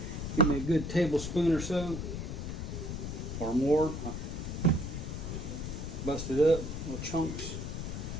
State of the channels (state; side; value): noise; left; rumble, 5 dB below the sound